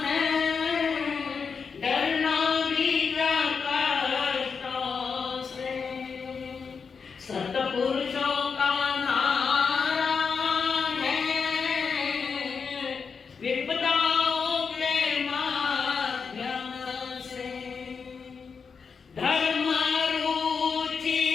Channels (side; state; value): right; quieter; 5.7 dB